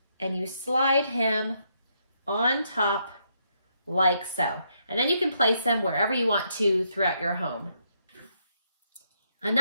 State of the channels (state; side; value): inverted; both; correlation -0.76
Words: and you slide him on top like so. And then you can place them wherever you want to throughout your home.